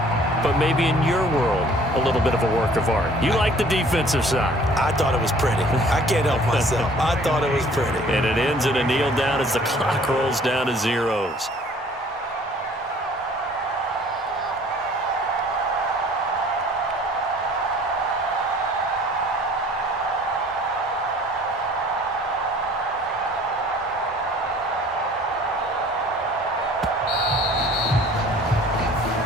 but maybe in your world, a little bit of a work of art. You like the defensive side. I thought it was pretty. I can't help myself. I thought it was pretty. And it ends in a kneel down as the clock rolls down to zeros.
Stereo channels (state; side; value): normal; both; correlation 0.53